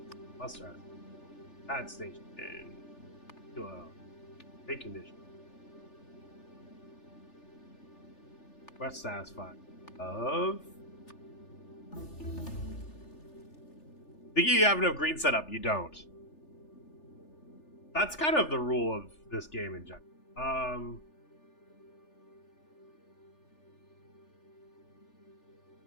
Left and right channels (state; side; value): late; right; 3.4 ms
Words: must have pad station to a big condition. Quest satisfied. Of. Think you have enough green setup? You don't. That's kind of the rule of this game in general.